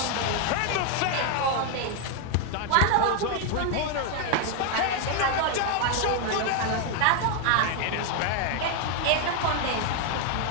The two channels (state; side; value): different; both; correlation 0.01